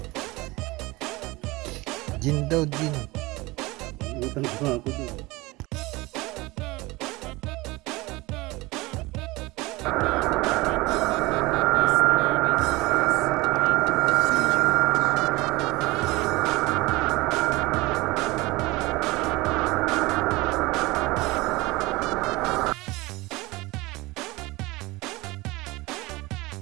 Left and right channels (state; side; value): quieter; left; 21.9 dB